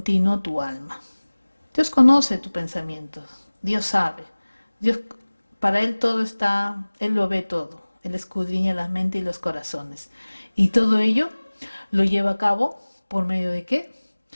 tu alma. Dios conoce tus pensamientos, Dios sabe, Dios, para Él todo está, Él lo ve todo, Él escudriña la mente y los corazones. Y todo ello lo lleva a cabo por medio de ¿qué?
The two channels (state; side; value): inverted; both; correlation -1.00